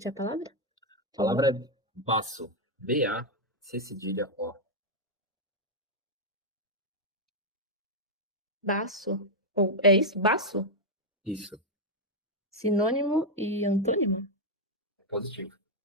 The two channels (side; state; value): both; normal; correlation 0.00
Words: a palavra? Palavra baço. B-A-C cedilha O. Baço? Ou é isso? Baço? Isso. Sinônimo e antônimo? Positivo.